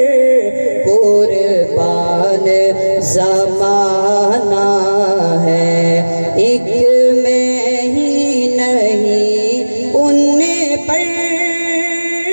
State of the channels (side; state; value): both; inverted; correlation -1.00